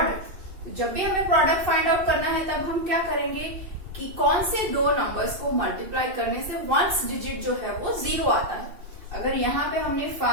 जब भी हमें प्रोडक्ट फाइंड आउट करना है तब हम क्या करेंगे कि कौन से दो नंबर्स को मल्टीप्लाई करने से वंस डिजिट जो है वो 0 आता है। अगर यहाँ पे हमने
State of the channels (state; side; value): late; left; 2.6 ms